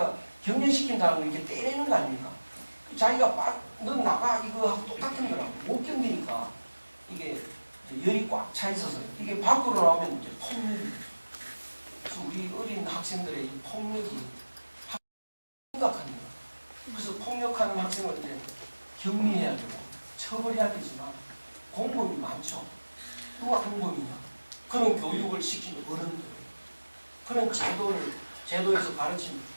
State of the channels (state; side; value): inverted; both; correlation -1.00